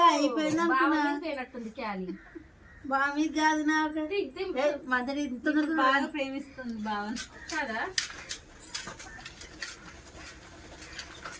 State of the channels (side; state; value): both; identical; correlation 1.00